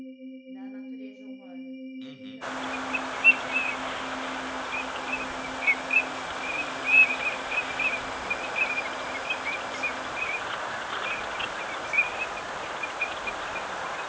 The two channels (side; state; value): both; identical; correlation 1.00